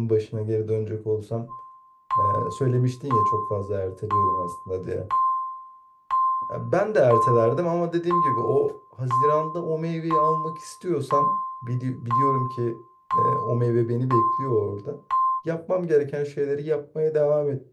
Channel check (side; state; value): both; identical; correlation 1.00